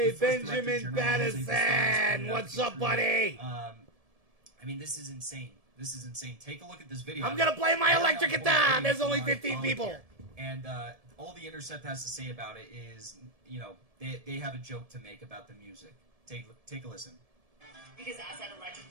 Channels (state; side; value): late; left; 1.7 ms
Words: Benjamin Madison! What's up, buddy? I mean, this is insane. This is insane. Take a look at this video. I'm gonna play my electric guitar! There's only 15 people! And all the Intercept has to say about it is, they have a joke to make about the music. Take a listen. Because Assad